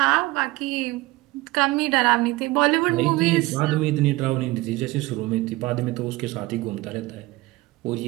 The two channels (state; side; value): quieter; left; 20.3 dB